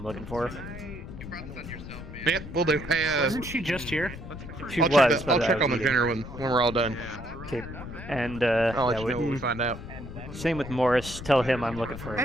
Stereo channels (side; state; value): left; noise; rumble, 11 dB below the sound